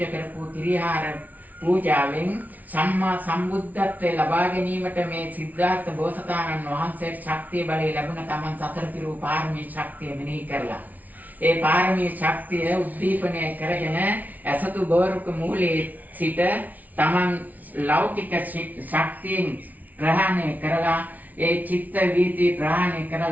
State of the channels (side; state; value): left; late; 0.076 ms